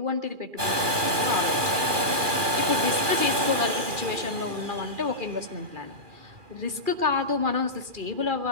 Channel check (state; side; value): late; left; 2.4 ms